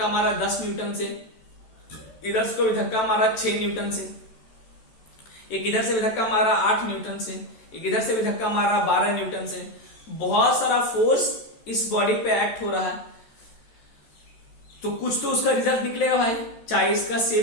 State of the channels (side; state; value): right; late; 14 ms